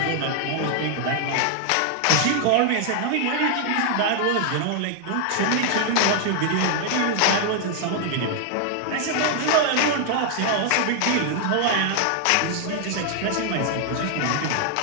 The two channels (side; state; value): both; different; correlation 0.00